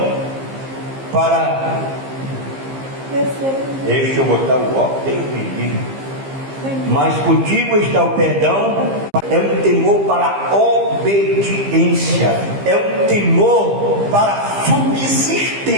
para... Deixa eu botar o óculos, Deus me livre. Mas contigo está o perdão, é um temor para a obediência, é um temor para a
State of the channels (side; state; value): left; late; 15 ms